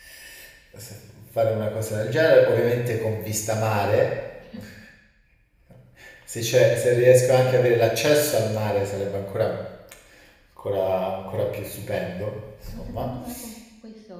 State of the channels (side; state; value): both; identical; correlation 1.00